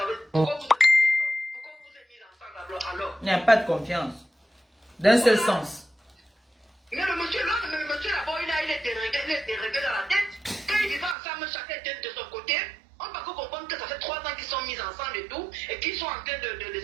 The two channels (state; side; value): drops out; left; at 11.2 s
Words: Pourquoi vous êtes mariés alors? Pourquoi vous êtes mis ensemble alors? Il n'y a pas de confiance. D'un seul sens. Mais le monsieur là-bas, il est déréglé dans la tête. Quand ils vivent ensemble, chacun était de son côté. On peut comprendre que ça fait 3 ans qu'ils sont mis ensemble et tout, et qu'ils sont en train de